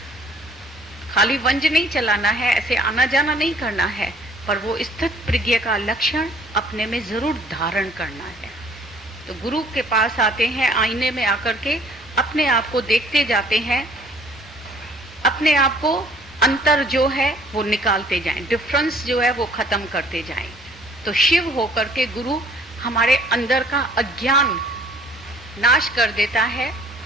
खाली वंज नहीं चलाना है, ऐसे आना जाना नहीं करना है, पर वो स्थित प्रज्ञ का लक्षण अपने में जरूर धारण करना है। तो गुरु के पास आते हैं, आईने में आकर के अपने आप को देखते जाते हैं, अपने आप को अंतर जो है वो निकालते जाएं, डिफरेंस जो है वो खत्म करते जाएं। तो शिव होकर के गुरु हमारे अंदर का अज्ञान नाश कर देता है।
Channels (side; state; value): both; normal; correlation 0.57